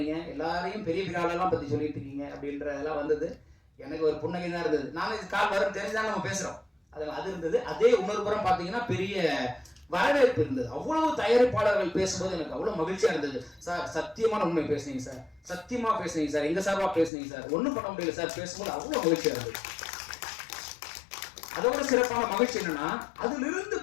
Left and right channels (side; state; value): right; drops out; at 17.1 s